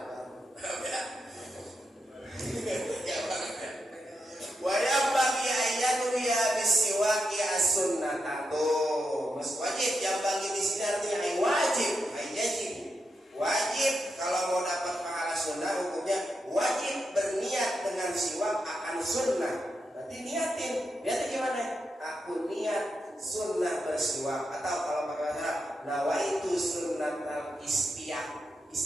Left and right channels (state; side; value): normal; both; correlation 0.85